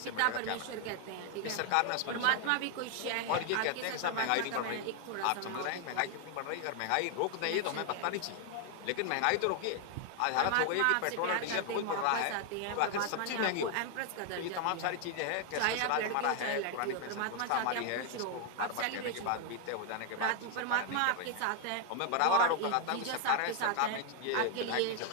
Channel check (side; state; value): both; different; correlation 0.00